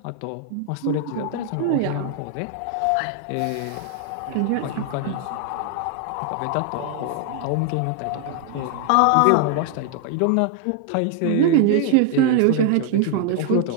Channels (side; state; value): both; different; correlation 0.00